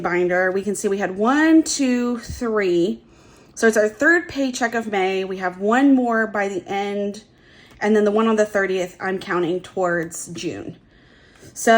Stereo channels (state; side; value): identical; both; correlation 1.00